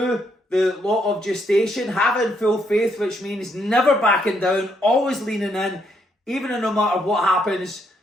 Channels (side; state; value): both; normal; correlation 0.74